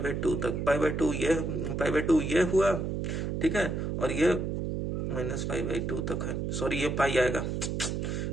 तक, π/2 ये हुआ। ठीक है, और ये -π/2 तक है, सॉरी ये पाई आएगा,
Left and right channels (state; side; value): noise; right; hum, 2 dB below the sound